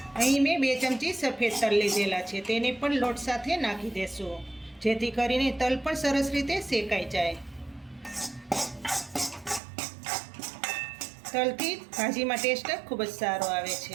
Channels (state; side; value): drops out; left; at 9.6 s